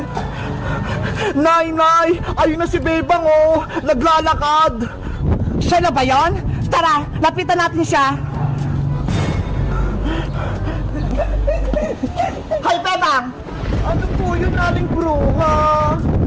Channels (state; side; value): identical; both; correlation 1.00